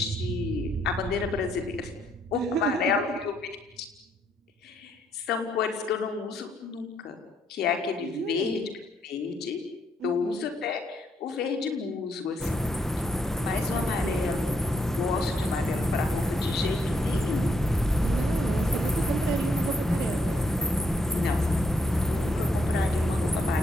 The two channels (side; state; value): both; normal; correlation 0.74